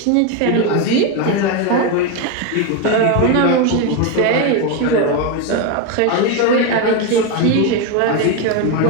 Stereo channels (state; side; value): different; both; correlation 0.03